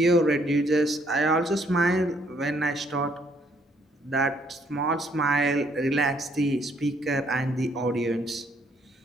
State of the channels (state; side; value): normal; both; correlation 0.68